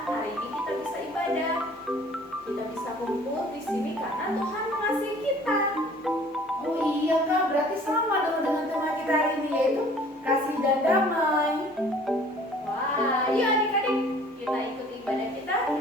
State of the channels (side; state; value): both; normal; correlation 0.52